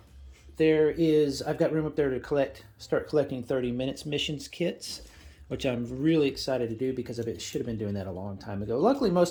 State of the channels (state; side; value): identical; both; correlation 1.00